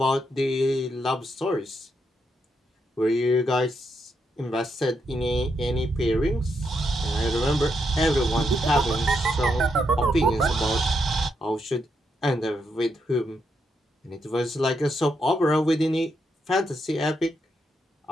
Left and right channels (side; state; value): both; normal; correlation 0.80